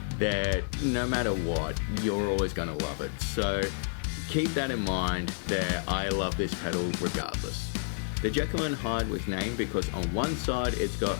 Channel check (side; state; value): right; silent; 58 dB below the other